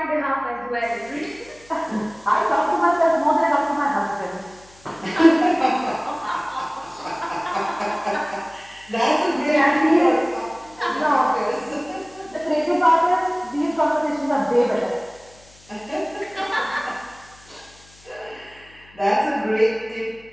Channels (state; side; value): noise; left; hum, 27 dB below the sound